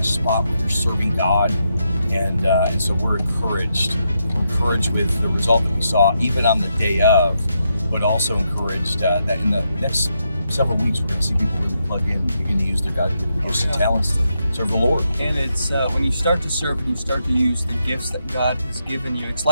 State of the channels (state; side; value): inverted; both; correlation -0.82